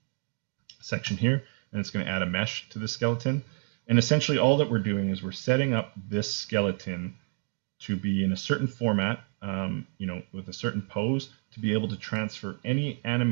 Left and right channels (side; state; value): left; quieter; 38.3 dB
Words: section here, and it's going to add a mesh to the skeleton. And essentially all that we're doing is we're setting up this skeleton to be in a certain format, with a certain pose, to be able to transfer any